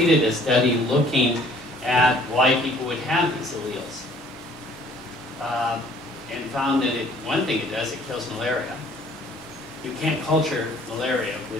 a study looking at why people would have these alleles. And found that one thing it does, it kills malaria. You can't culture malaria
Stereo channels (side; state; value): both; normal; correlation 0.57